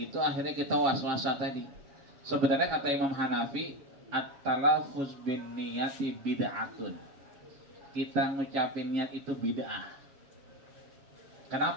akhirnya kita was-wasa tadi. Sebenarnya kata Imam Hanafi, at-talafuz bin niyati bid'atun. Kita ngucapin niat itu bid'ah.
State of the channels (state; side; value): late; left; 7.2 ms